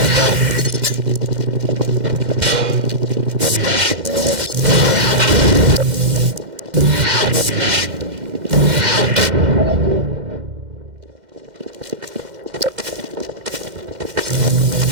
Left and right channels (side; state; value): left; late; 2.1 ms